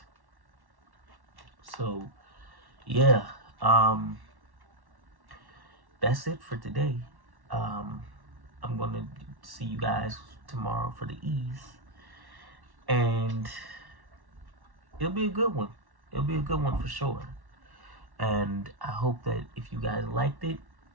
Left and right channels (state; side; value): late; left; 1.1 ms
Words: So, yeah, that's it for today. I'm gonna see you guys tomorrow for the E's, and it'll be a good one. It'll be a good one for sure. And I hope that if you guys liked it,